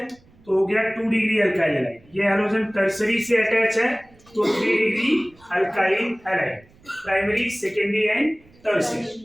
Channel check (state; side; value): noise; right; rumble, 28 dB below the sound